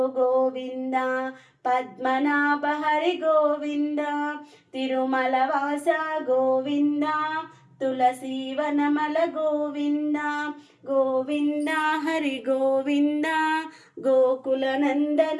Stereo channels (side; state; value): both; identical; correlation 1.00